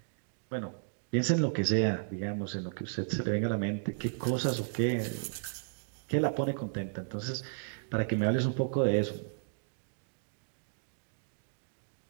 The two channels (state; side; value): silent; left; digital silence